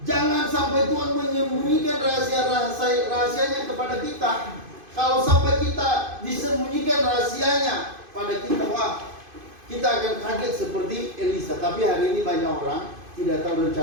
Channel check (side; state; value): left; late; 2.5 ms